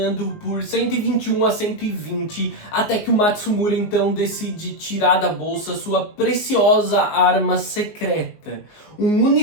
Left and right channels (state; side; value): late; right; 19 ms